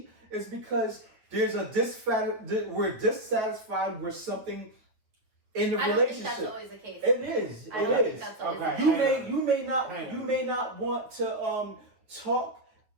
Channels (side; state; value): left; late; 9.1 ms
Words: It's because there's a we're dissatisfied with something in the I don't think relationship. that's always the case. It is. I It don't think is. that's always Okay. the You case. may not want to talk